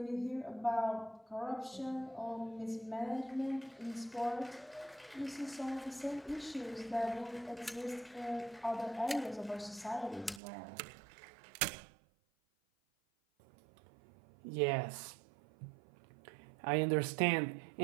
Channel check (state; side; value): drops out; left; at 10.4 s